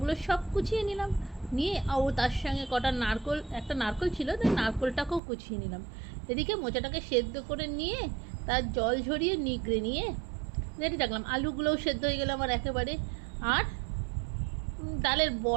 সব কুচিয়ে নিলাম, নিয়ে ও তার সঙ্গে কটা নারকোল, একটা নারকোল ছিল, তাই নারকোলটাকেও কুচিয়ে নিলাম। এদিকে মোচাটাকে সেদ্ধ করে নিয়ে তার জল ঝরিয়ে নিগড়ে নিয়ে রেডি রাখলাম। আলুগুলোও সেদ্ধ হয়ে গেল আমার একেবারে। আর ডালের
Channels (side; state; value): left; drops out; at 5.2 s